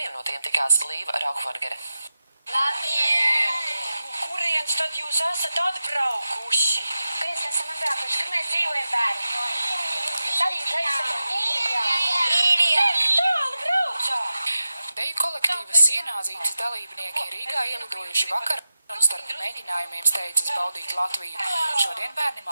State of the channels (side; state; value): both; inverted; correlation -0.92